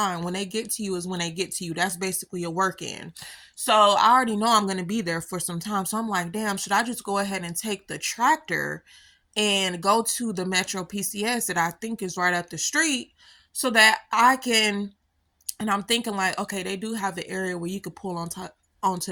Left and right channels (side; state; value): both; identical; correlation 1.00